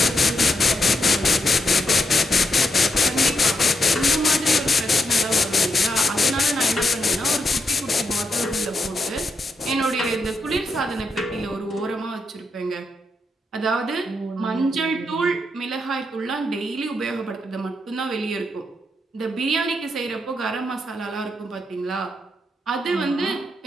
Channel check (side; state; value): both; normal; correlation 0.81